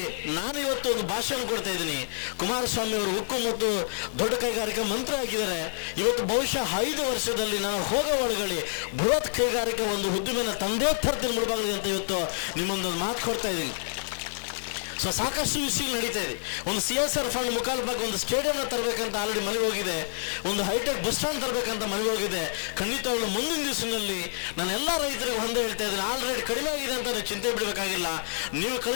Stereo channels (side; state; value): right; silent; 59 dB below the other